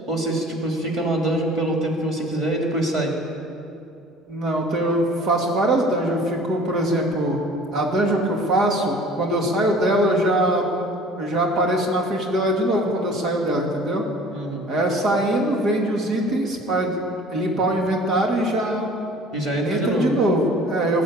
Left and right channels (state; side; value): normal; both; correlation 0.48